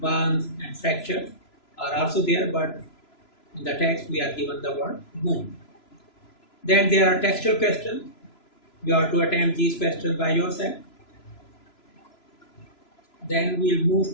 and fractures are also there, but in the text we are given the word wound. Then there are textual questions. You have to attempt these questions by yourself. Then we'll move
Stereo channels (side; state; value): right; late; 3.0 ms